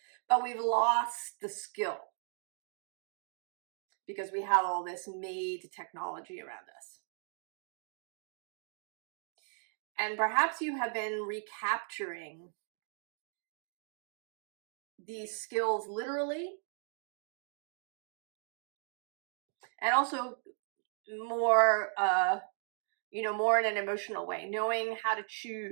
But we've lost the skill because we have all this made technology around us. And perhaps you have been recapturing these skills literally, and also more, you know, more in an emotional way, knowing how to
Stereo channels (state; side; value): silent; left; 53 dB below the other